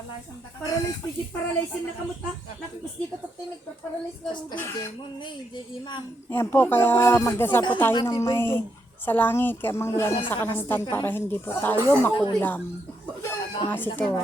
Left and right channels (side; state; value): both; normal; correlation 0.79